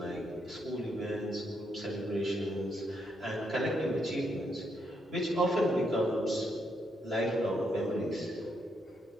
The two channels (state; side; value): normal; both; correlation 0.78